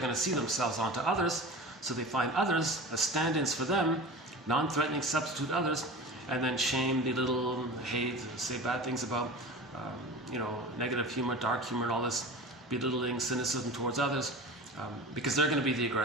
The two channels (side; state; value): both; normal; correlation 0.33